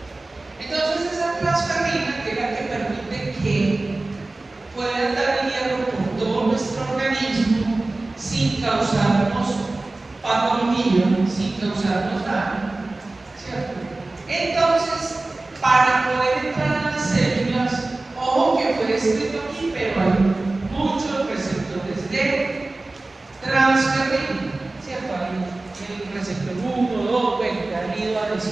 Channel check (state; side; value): quieter; left; 3.1 dB